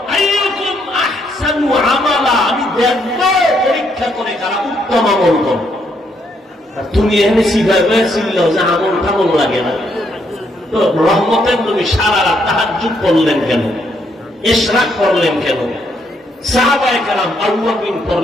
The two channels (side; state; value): both; normal; correlation 0.74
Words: আইয়ুকুম আহসানু আমালা, আমি দেখব পরীক্ষা করে কারা উত্তম আমল করে। আর তুমি এখানে শিখাবে ছিল যে আমল টামল লাগে না, তো রহমতের নবী সারা রাত তাহাজ্জুদ পড়লেন কেন, ইশরাক পড়লেন কেন, সাহাবায়ে কেরাম আউয়াবিন